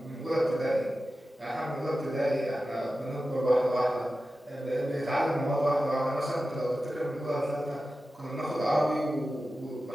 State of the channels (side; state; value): both; normal; correlation 0.93